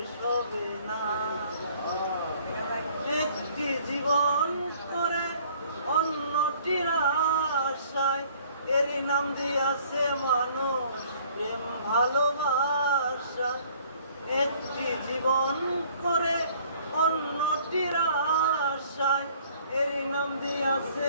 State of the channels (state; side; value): inverted; both; correlation -0.57